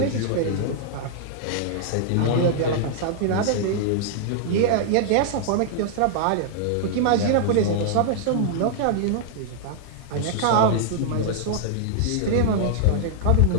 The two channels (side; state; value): both; different; correlation -0.01